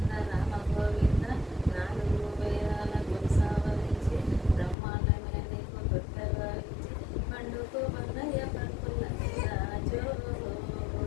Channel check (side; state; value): right; drops out; at 4.8 s